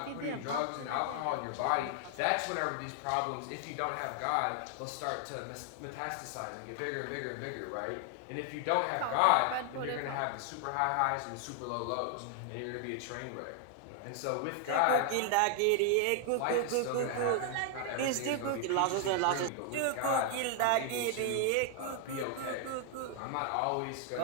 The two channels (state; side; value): different; both; correlation 0.00